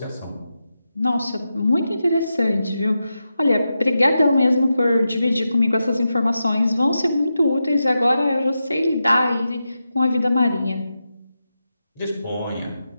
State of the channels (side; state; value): both; inverted; correlation -0.89